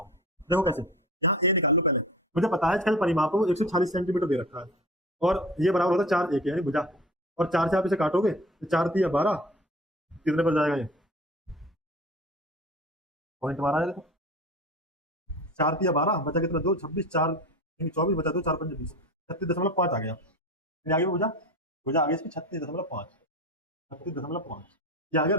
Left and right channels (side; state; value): both; normal; correlation 0.37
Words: देखो कैसे, यहाँ ए निकाल लो पहले। मुझे पता है इसका परिमाप है वो 140 सेंटीमीटर दे रखा है और ये बराबर होता है 4 एक यानी भुजा। और 4 से आप इसे काटोगे तो 4 3 12, कितने पर जाएगा ये पॉइंट हमारा है। देखो 4 3 12 बचा कितना, 2 26 4 24 बचा, 2 4 5 20, 36.5 आ गया। फिर आगे भुजा, भुजा आगे इसकी 36.5, 36.5 ये आ गया